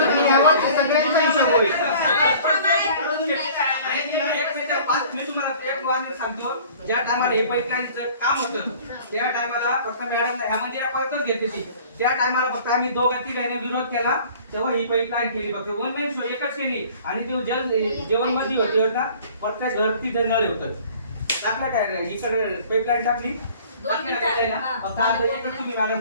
बाबतीत मी तुम्हाला एक वाक्य सांगतो. ज्या टायमाला हे पाईपलाईनचं काम होतं त्या टायमाला फक्त मॅडम ह्या मंदिरापर्यंतच घेतली ती. त्या टायमाला फक्त आम्ही दोघं तिघांनी विरोध केला तेव्हा ही पाईपलाईन केली. फक्त वन मेन शो एकच केली. आणि जो जेवण मध्ये होती ना प्रत्येक घर तिथं नळ होतं. टाकलं काय इकडे पाईपलाईन टाकली फक्त आता एकच तुम्ही मॅडम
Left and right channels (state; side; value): inverted; both; correlation -0.49